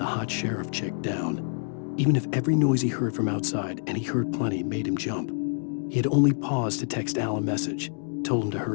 hot sheriff chick down. Even if every noise he heard from outside, and he heard plenty, made him jump. He had only paused to text Al a message, told him to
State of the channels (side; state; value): right; silent; digital silence